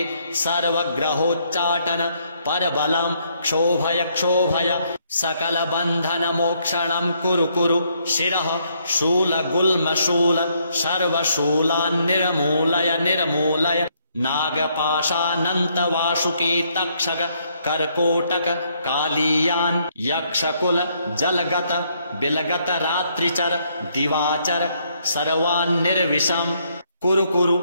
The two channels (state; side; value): inverted; both; correlation -0.71